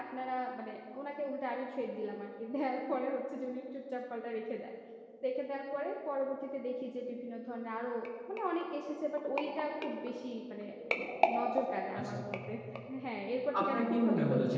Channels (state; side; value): identical; both; correlation 1.00